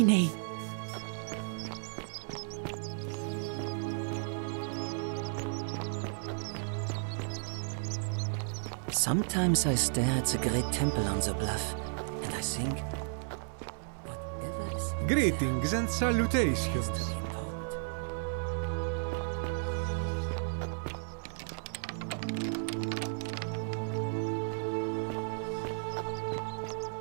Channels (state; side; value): silent; left; 55 dB below the other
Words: Sometimes I stare at the great temple on the bluff, and I think, Greetings and salutations.